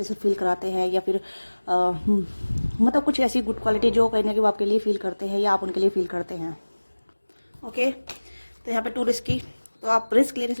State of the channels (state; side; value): inverted; both; correlation -1.00